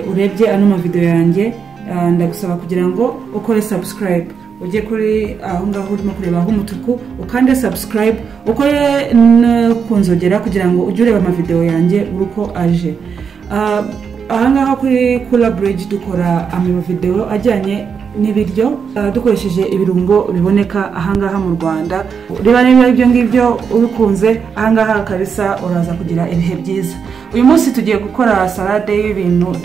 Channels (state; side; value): quieter; left; 6.4 dB